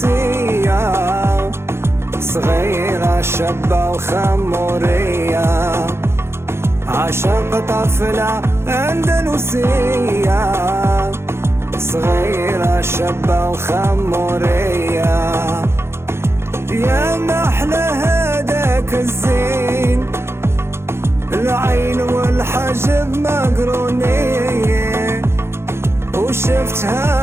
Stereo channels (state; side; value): late; left; 0.12 ms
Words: صغيرة شابة وخمورية عشق طفلة أندلسية صغيرة شابة وخمورية يا محلى هداك الزين العين والحجب مقرونين